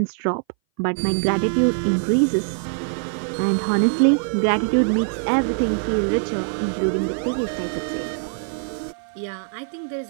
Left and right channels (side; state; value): left; silent; 61 dB below the other